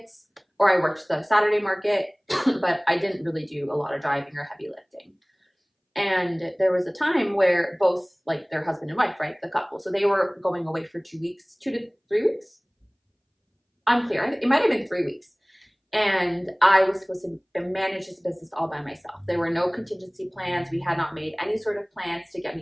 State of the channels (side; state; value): both; identical; correlation 1.00